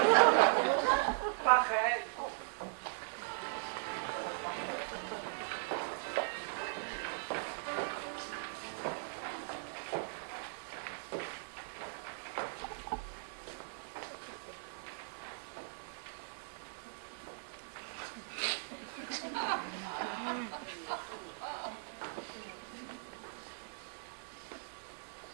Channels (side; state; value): left; silent; 52 dB below the other